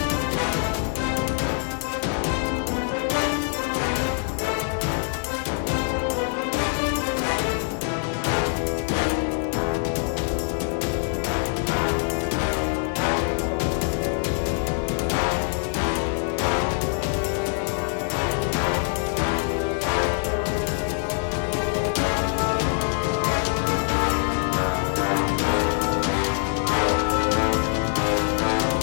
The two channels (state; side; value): silent; right; 60 dB below the other